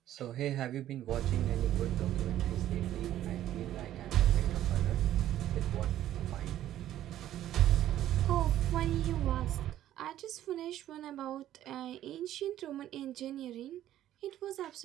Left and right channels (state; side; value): quieter; left; 12.6 dB